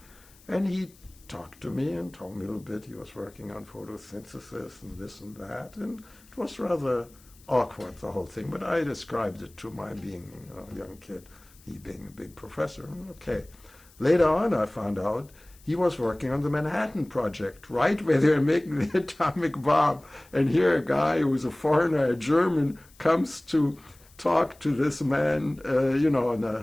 And he talked to me and told me a little bit. He was working on photosynthesis and this and that, and it was rather awkward, the whole thing. But I described it to my being a young kid, he being a big professor. Okay. Later on, I found out he was working on the Manhattan Project, right where they're making the atomic bomb. And here a guy who's a foreigner, a German, comes to talk to this man, in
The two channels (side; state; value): left; noise; hiss, 27 dB below the sound